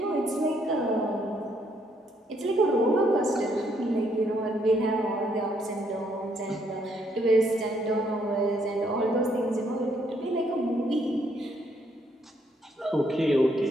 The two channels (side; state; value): both; normal; correlation 0.71